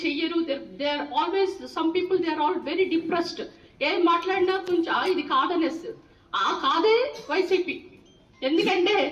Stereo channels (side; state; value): both; identical; correlation 1.00